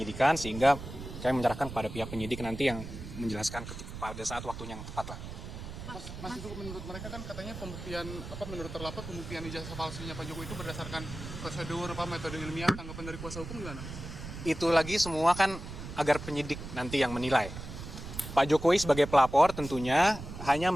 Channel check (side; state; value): right; noise; rumble, 10 dB below the sound